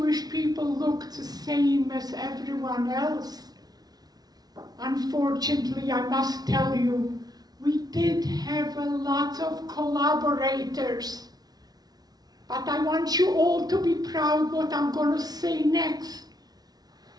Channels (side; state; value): left; late; 0.19 ms